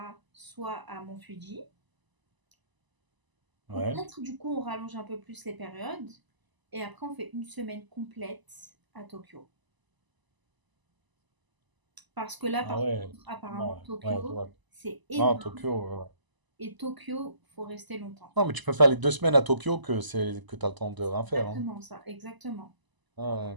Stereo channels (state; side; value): late; left; 1.0 ms